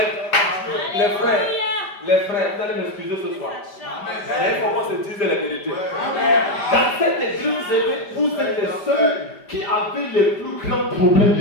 Les frères, vous allez m'excuser ce soir. Mais il faut qu'on se dise la vérité. Dans cette église, vous êtes les seuls qui avaient les plus grands problèmes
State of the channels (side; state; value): right; late; 5.0 ms